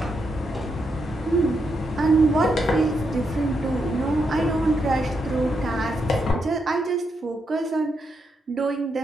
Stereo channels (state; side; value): normal; both; correlation 0.82